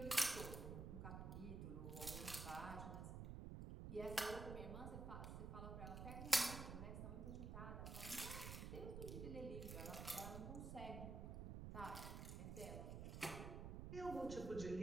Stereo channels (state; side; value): noise; right; rumble, 5 dB below the sound